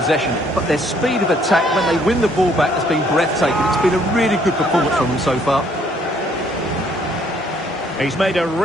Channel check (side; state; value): both; normal; correlation 0.65